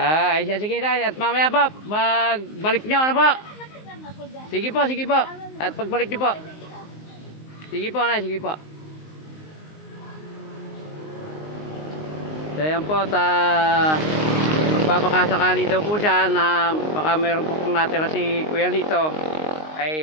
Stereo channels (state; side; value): late; right; 19 ms